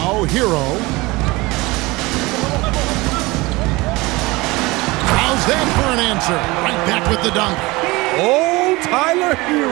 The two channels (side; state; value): left; quieter; 22.2 dB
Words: Hero. How's that for an answer? Right back with the dunk. Oh, Tyler